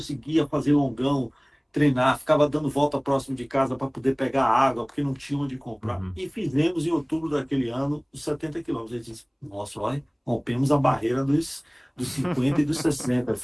fazer longão, treinar, ficava dando volta próximo de casa para poder pegar água, porque não tinha onde comprar. Uhum. E fizemos em outubro daquele ano os 70 quilômetros. A gente disse, nossa, olha, rompemos a barreira dos 50 e dos 60,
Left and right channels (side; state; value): both; identical; correlation 1.00